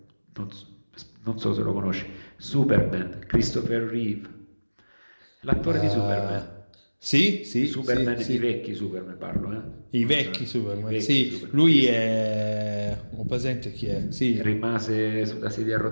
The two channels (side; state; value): both; inverted; correlation -1.00